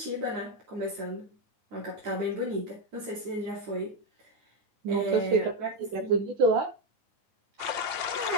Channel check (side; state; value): left; late; 8.7 ms